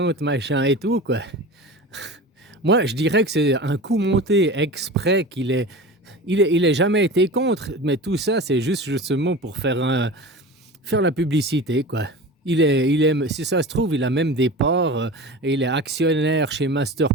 machin et tout, quoi. Moi, je dirais que c'est un coup monté exprès il est jamais été contre, mais tout ça, c'est juste justement pour faire la publicité, quoi. Si ça se trouve, il a même des parts, et il est actionnaire chez Master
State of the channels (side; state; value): both; normal; correlation 0.33